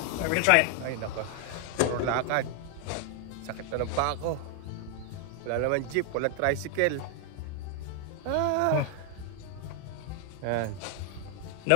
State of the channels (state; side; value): different; both; correlation 0.00